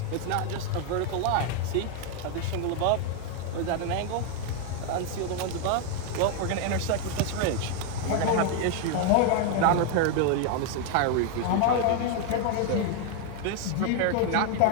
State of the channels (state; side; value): different; both; correlation 0.01